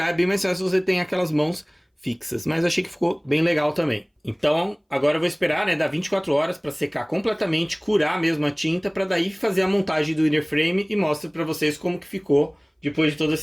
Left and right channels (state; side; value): identical; both; correlation 1.00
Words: é bem mais fácil se você tem aquelas mãos fixas, mas achei que ficou bem legal também. Então, agora eu vou esperar, né, dar 24 horas para secar completamente, curar mesmo a tinta, para daí fazer a montagem do inner frame e mostro para vocês como que ficou depois de todo